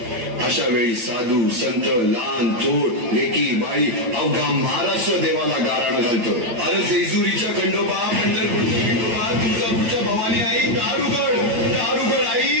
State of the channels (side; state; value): left; late; 9.1 ms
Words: अशा वेळी साधू, संत, लहान, थोर, लेकी, बाळी अवघा महाराष्ट्र देवाला गाराणं घालतो. अरे जेजुरीच्या खंडोबा, पंढरपूरच्या खंडोबा, तुळजापूरच्या भवानी आई, दारुगड, दारुगड